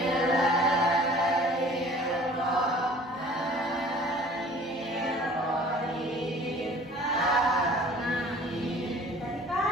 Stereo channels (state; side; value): normal; both; correlation 0.49